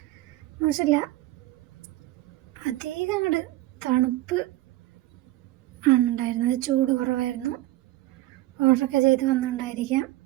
മോശമില്ല, അധികം അങ്ങോട്ട് തണുപ്പ് ആണ് ഉണ്ടായിരുന്നത്, ചൂട് കുറവായിരുന്നു. ഓർഡറൊക്കെ ചെയ്ത് വന്നിട്ടുണ്ടായിരിക്കാം.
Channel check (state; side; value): quieter; left; 16.8 dB